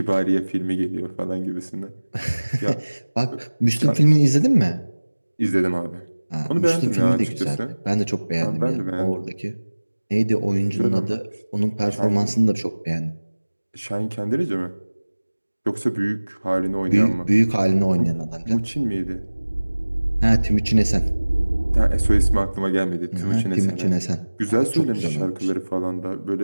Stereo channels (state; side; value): inverted; both; correlation -1.00